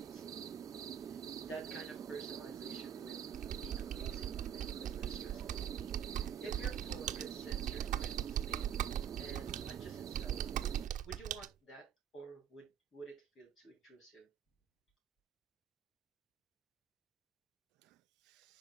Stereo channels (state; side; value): quieter; left; 9.1 dB